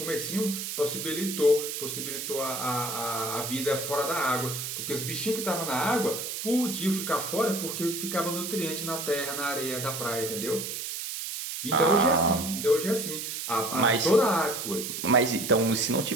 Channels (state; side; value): noise; right; hiss, 5 dB below the sound